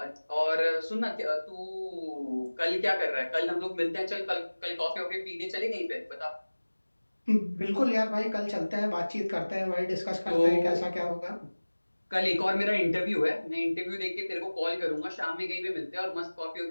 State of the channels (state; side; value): inverted; both; correlation -1.00